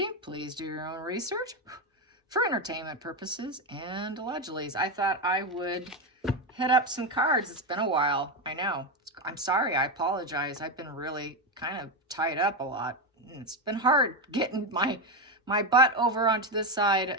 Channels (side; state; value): both; normal; correlation 0.11